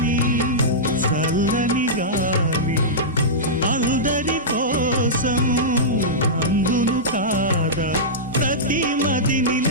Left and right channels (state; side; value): normal; both; correlation -0.13